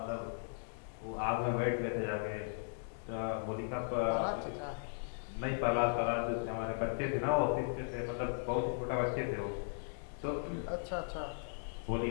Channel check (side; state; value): right; silent; digital silence